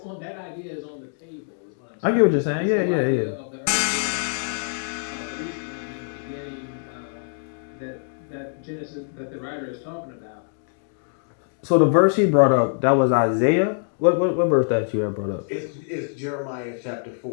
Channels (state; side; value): silent; right; digital silence